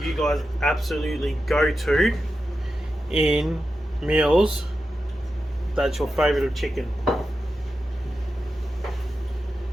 you guys absolutely go to in meals that's your favourite of chicken?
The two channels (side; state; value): both; normal; correlation 0.90